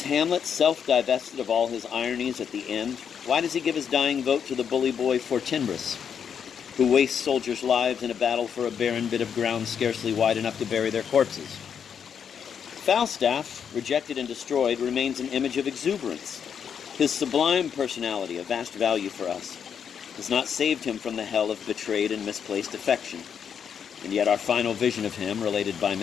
Hamlet self-divested of all his ironies at the end? Why does he give his dying vote to the bully boy Fortinbras, who wastes soldiers' lives in a battle for a barren bit of ground scarcely wide enough to bury their corpses? Falstaff, rejected and destroyed, remains an image of exuberance. His sublime personality, of vast value for us, has not saved him from the hell of betrayed and misplaced affection. And yet our final vision of him, related by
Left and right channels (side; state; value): right; quieter; 7.6 dB